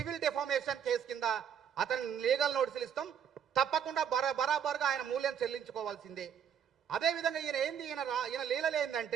defamation case కింద అతను లీగల్ నోటీసులు ఇస్తాం. తప్పకుండా బరాబర్గా ఆయన మూల్యం చెల్లించుకోవాల్సిందే. అదేవిధంగా ఈయన లీలలు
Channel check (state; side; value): quieter; left; 8.3 dB